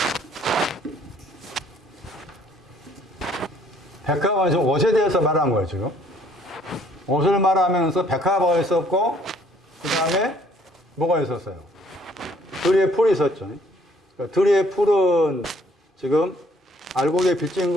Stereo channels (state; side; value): normal; both; correlation 0.61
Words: 백합은 지금 옷에 대해서 말한 거예요, 지금. 옷을 말하면서 백합어가 있었고, 그 다음에 뭐가 있었어요? 들의 풀이 있었죠. 그러니까 들의 풀은 지금 알곡에 빚진